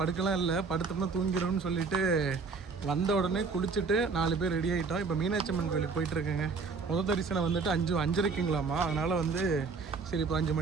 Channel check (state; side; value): quieter; left; 4.7 dB